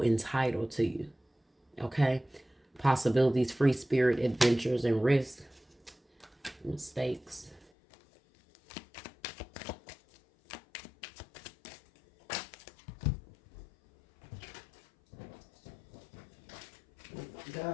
entitled to you. Okay. Possibilities, free spirit, adventures, and risk. Mistakes.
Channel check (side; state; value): right; drops out; at 7.7 s